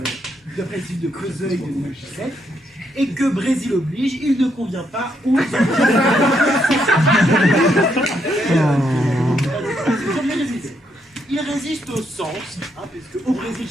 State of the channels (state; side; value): normal; both; correlation 0.76